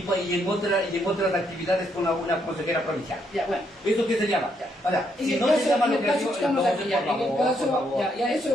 en otras actividades con una consejera provincial. Ya, bueno. ¿Eso qué se llama? Ahora, si no se llama lo que digo, entonces,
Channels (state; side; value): normal; both; correlation 0.75